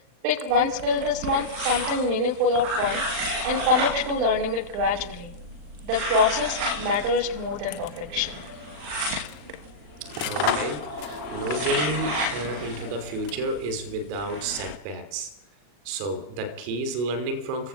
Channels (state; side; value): late; left; 40 ms